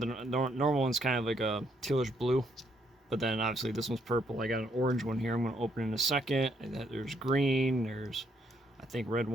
normal one's kind of like a tealish blue, but then obviously this one's purple. I got an orange one here. I'm going to open in a second. And there's green. There's, I think, red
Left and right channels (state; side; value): normal; both; correlation 0.72